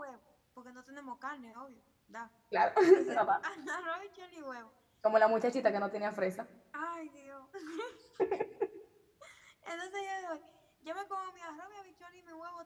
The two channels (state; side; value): identical; both; correlation 1.00